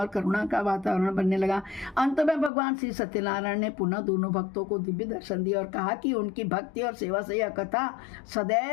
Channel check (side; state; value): right; drops out; at 2.5 s